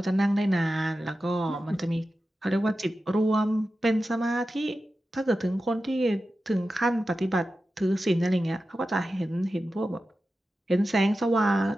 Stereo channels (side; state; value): both; normal; correlation 0.93